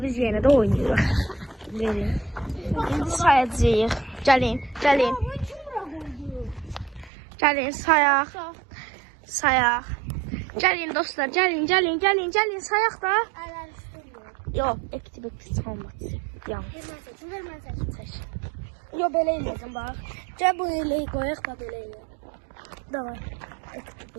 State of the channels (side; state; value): left; drops out; at 7.1 s